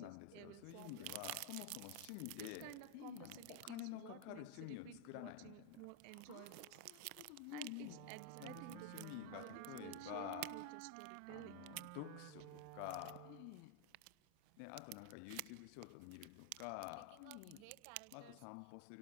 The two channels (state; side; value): different; both; correlation 0.00